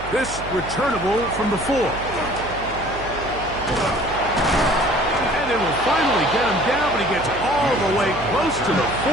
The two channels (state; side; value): noise; right; hum, 12 dB below the sound